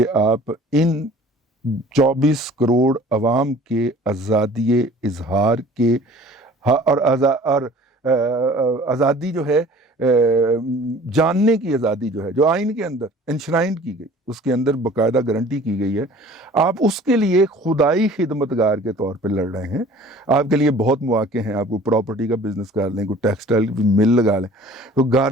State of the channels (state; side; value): normal; both; correlation 0.48